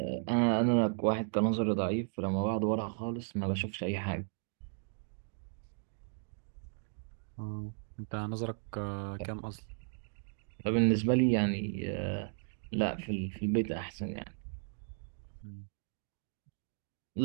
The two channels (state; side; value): silent; left; 54 dB below the other